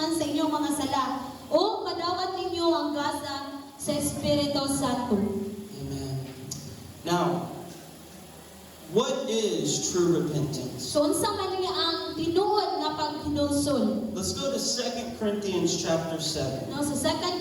sa inyong mga sala, o madawat ninyo ang gasa sa Espiritu Santo. Amen. Now, what is true repentance? So unsa man niya ang tinuod nga paghinusol? Let's go to 2 Corinthians chapter 7. No, sa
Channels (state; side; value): identical; both; correlation 1.00